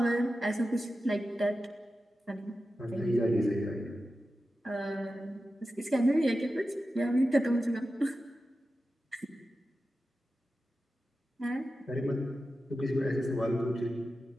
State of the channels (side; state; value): both; normal; correlation 0.92